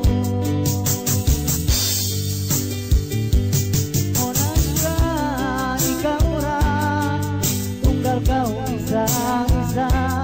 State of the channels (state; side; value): identical; both; correlation 1.00